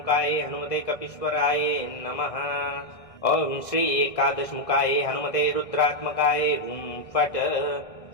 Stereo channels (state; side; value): late; right; 1.6 ms